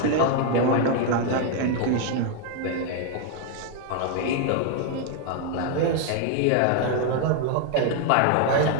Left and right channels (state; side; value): different; both; correlation 0.01